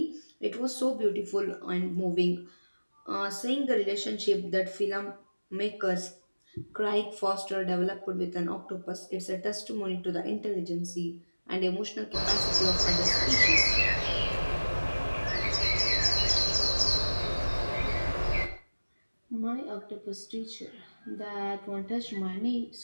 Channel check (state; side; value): inverted; both; correlation -1.00